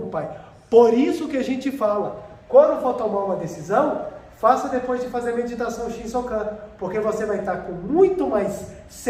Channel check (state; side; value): identical; both; correlation 1.00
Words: o Pai. Por isso que a gente fala, quando for tomar uma decisão, faça depois de fazer a meditação Shinsokan, porque você vai estar com muito mais